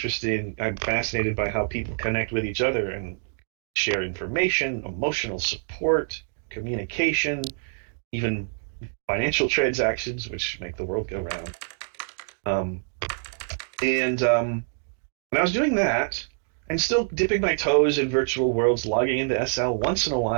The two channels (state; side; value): silent; left; digital silence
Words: in, I'm fascinated by how people connect with each other and share information, emotional support, communication, even financial transactions, which make the world go round. Um, and when I was doing that, and still dipping my toes in virtual worlds, logging into SL once in a